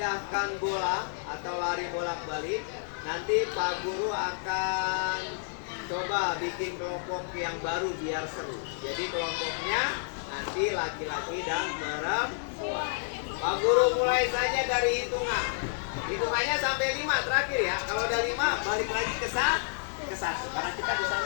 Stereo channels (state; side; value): silent; right; digital silence